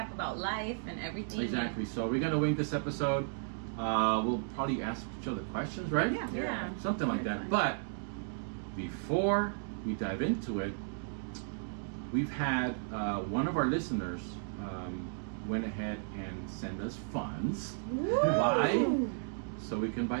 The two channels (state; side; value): silent; left; digital silence